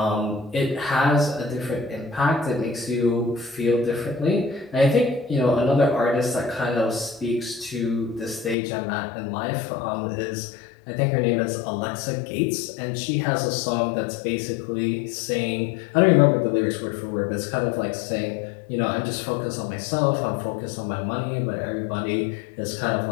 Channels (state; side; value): drops out; right; at 8.6 s